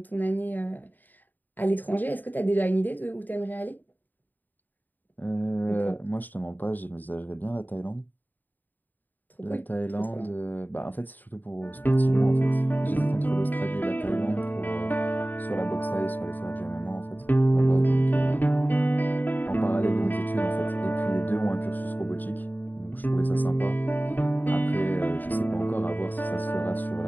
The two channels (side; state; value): right; late; 0.087 ms